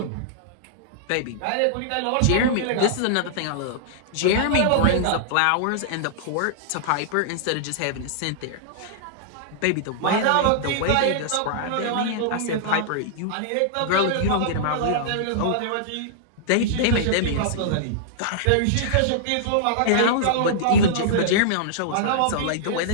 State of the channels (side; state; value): both; different; correlation -0.02